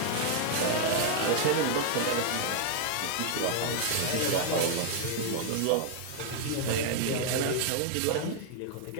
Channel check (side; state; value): both; different; correlation 0.00